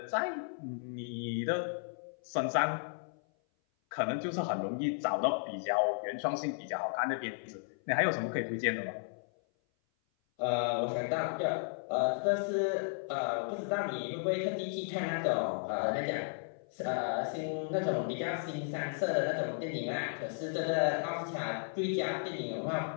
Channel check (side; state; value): right; silent; 55 dB below the other